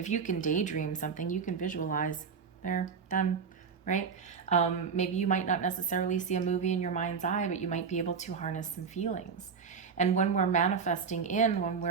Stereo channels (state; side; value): quieter; left; 6.0 dB